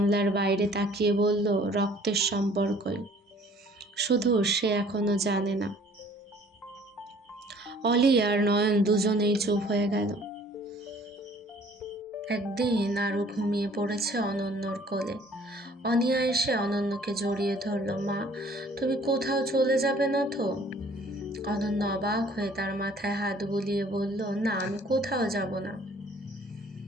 বাইরে তাকিয়ে বলল, রক্তের সম্পর্কই, শুধু সে এখনো জানে না। অলি আর নয়ন দুজনেই চুপ হয়ে গেল। একদিন আরও ঘুমিয়ে পড়েছে অনন্যর কোলে। অনিয়া এসে অনন্যকে জড়িয়ে ধরল। মা, তুমি কোথাও চলে যাবে না তো? অনন্য অবাক হয়ে তার মাথায় হাত বুলিয়ে বলল, না, আমি কোথাও যাব না।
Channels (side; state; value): both; normal; correlation 0.55